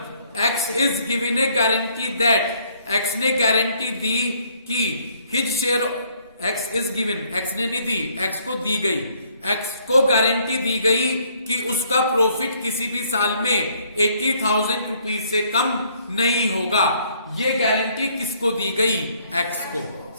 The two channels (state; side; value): inverted; both; correlation -0.65